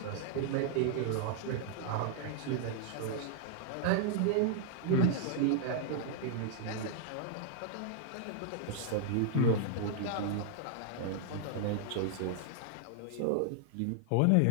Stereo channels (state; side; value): different; both; correlation -0.01